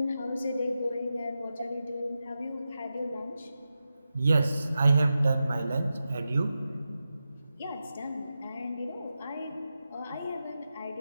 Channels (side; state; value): both; inverted; correlation -0.91